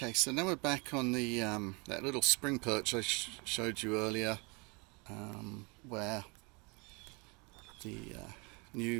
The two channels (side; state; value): left; quieter; 30.2 dB